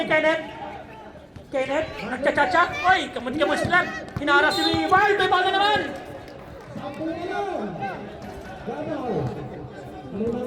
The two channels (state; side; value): identical; both; correlation 1.00